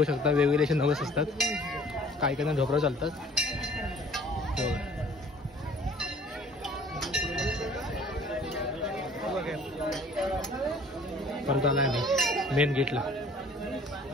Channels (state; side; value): normal; both; correlation 0.52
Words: शकता वेगवेगळे असे नवस असतात. काही काही ढोबराव चालतात. परत आलाय मी मेन गेटला.